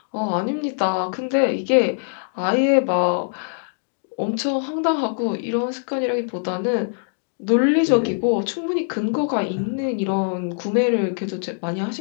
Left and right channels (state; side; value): silent; right; digital silence